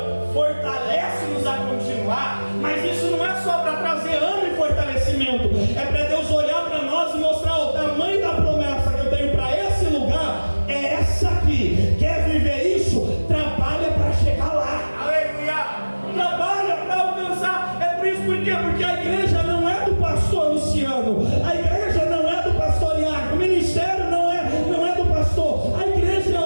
fortalece-nos a continuar, mas isso não é só para trazer ânimo e fortalecimento, é para Deus olhar para nós e mostrar o tamanho da promessa que eu tenho para esse lugar, é essa aqui. Quer viver isso? Trabalha para chegar lá. Trabalha para alcançar. É por isso, por quê? Porque a igreja não é do pastor Luciano, a igreja não é do pastor Iago, o ministério não é do pastor, a igreja é a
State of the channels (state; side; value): inverted; both; correlation -1.00